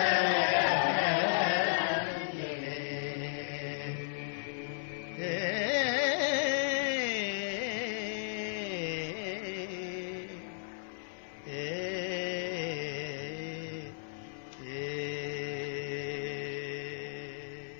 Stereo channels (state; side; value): silent; right; 55 dB below the other